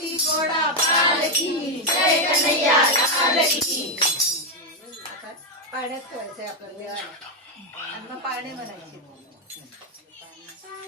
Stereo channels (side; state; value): both; normal; correlation 0.05